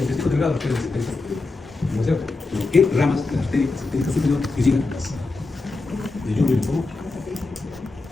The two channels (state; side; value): quieter; right; 3.5 dB